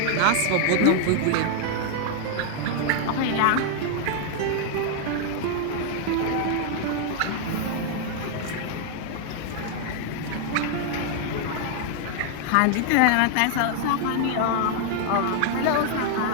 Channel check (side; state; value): both; different; correlation 0.00